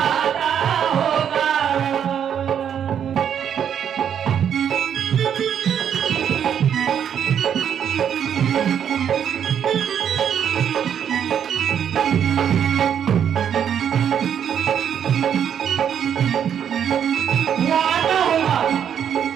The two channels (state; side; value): quieter; left; 8.7 dB